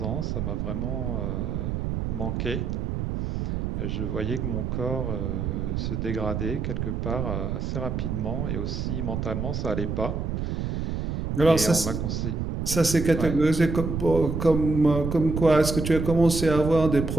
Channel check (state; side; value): noise; right; rumble, 2 dB below the sound